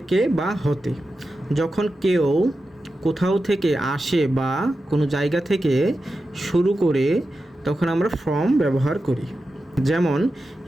বা হতে। যখন কেউ কোথাও থেকে আসে বা কোনো জায়গা থেকে শুরু করে তখন আমরা ফ্রম ব্যবহার করি। যেমন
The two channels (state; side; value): normal; both; correlation 0.91